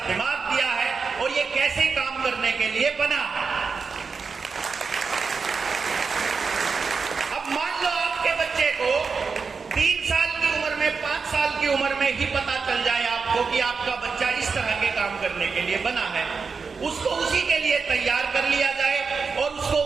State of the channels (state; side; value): quieter; left; 5.1 dB